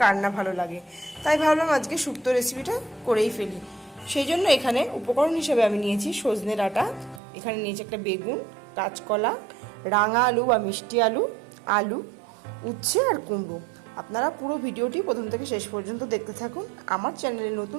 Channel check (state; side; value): drops out; left; at 7.2 s